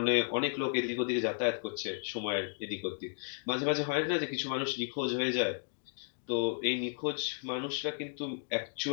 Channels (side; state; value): right; silent; 55 dB below the other